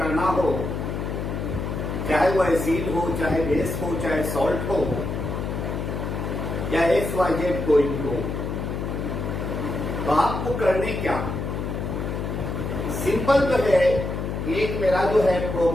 हो, चाहे वो एसिड हो, चाहे बेस हो, चाहे सॉल्ट हो या XYZ कोई भी हो, तो आपको करने क्या सिंपल तो है, एक मेरा जो है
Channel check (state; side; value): noise; left; hum, 3 dB below the sound